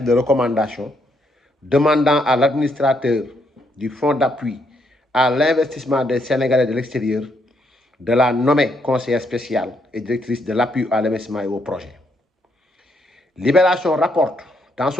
de recommandation demandant à l'administrateur du Fonds d'appui à l'investissement des Sénégalais de l'extérieur de la nommer conseillère spéciale et directrice de l'appui à l'investissement et au projet. Libération rapporte dans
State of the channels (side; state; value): both; normal; correlation 0.75